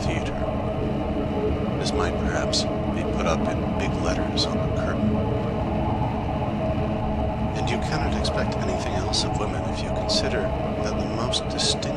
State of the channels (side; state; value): both; identical; correlation 1.00